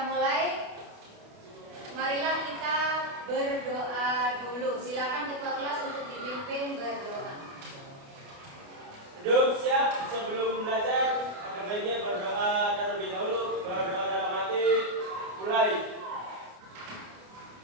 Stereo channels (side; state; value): left; late; 28 ms